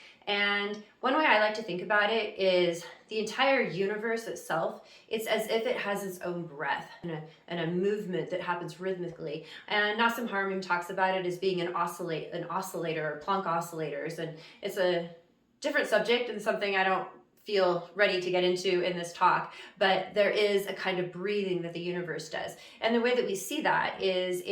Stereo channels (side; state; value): both; identical; correlation 1.00